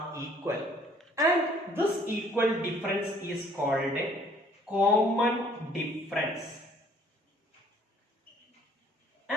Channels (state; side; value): normal; both; correlation 0.59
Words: equal, and this equal difference is called a common difference,